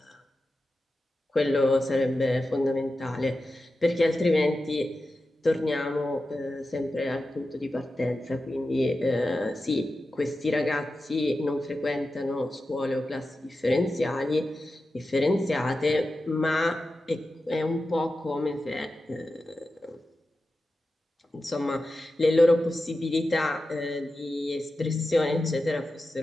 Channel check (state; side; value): normal; both; correlation 0.92